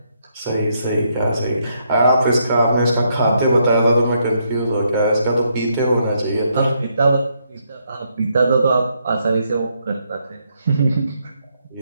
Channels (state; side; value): inverted; both; correlation -0.76